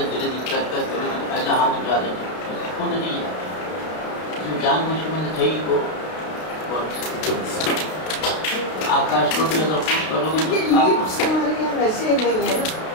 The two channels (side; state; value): right; late; 32 ms